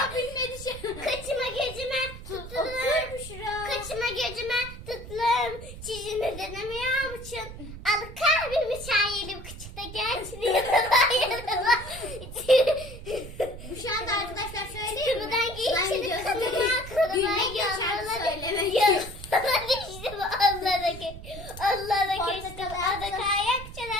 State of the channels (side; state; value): right; noise; rumble, 12 dB below the sound